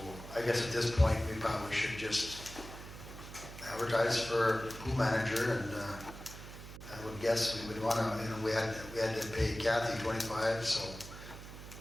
I guess at this point, we probably should just advertise for pool manager, and I would guess we would want to, you know, we had to pay Kathy 25, so,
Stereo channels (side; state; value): right; noise; hum, 13 dB below the sound